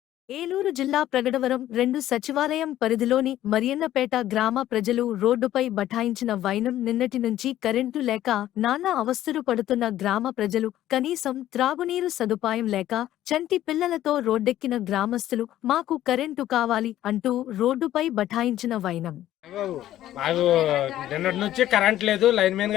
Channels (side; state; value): right; quieter; 13.2 dB